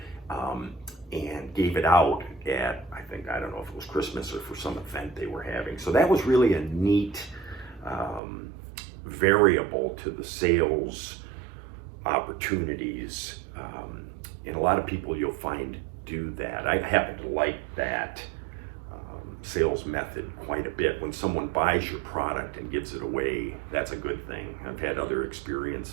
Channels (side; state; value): left; drops out; at 8.2 s